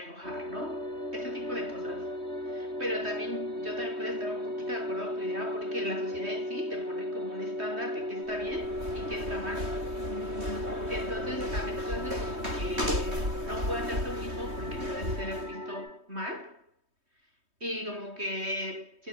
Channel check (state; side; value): late; left; 3.2 ms